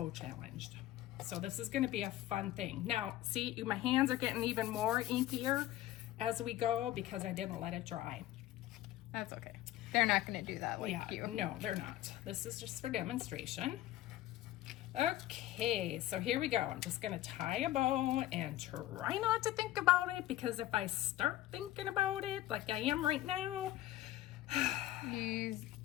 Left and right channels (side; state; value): right; quieter; 14.5 dB